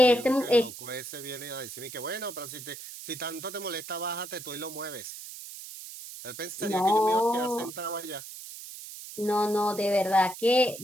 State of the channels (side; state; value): right; noise; hiss, 12 dB below the sound